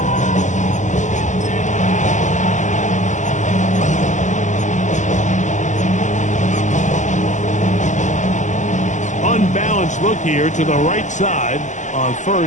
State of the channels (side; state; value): right; late; 0.35 ms